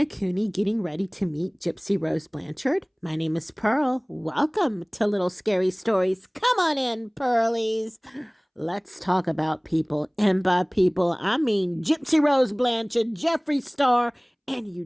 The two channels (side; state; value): both; identical; correlation 1.00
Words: getting ready to meet Gypsy Rose Blanchard? My name is Pearl. Welcome to Little Scary Stories. Come on in, Pearlies. Let's talk about people. And by people, I mean Gypsy Rose Blanchard, Jeffree Star, and